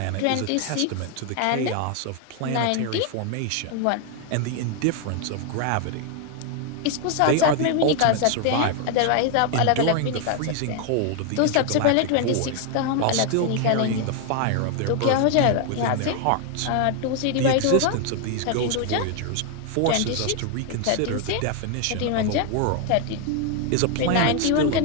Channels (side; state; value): both; different; correlation 0.01